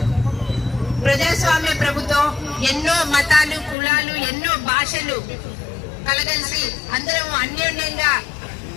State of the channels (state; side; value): drops out; right; at 3.8 s